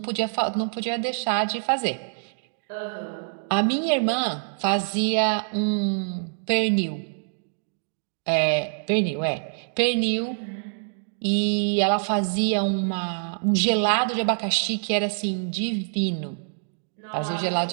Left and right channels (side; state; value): left; silent; digital silence